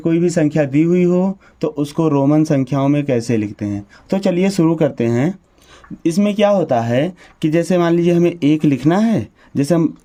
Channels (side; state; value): both; identical; correlation 1.00